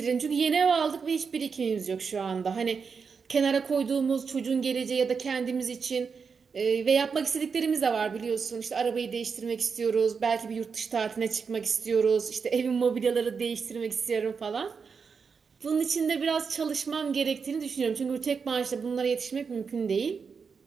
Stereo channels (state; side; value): quieter; left; 5.6 dB